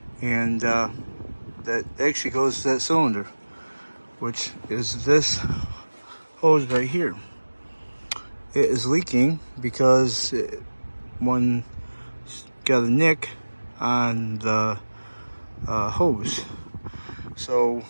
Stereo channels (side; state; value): both; inverted; correlation -1.00